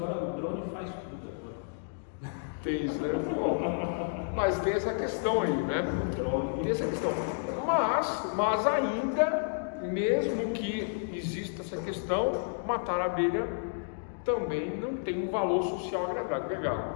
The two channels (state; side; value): silent; right; digital silence